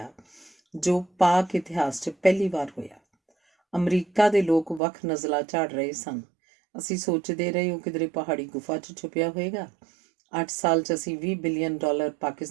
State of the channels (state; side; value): drops out; left; at 4.8 s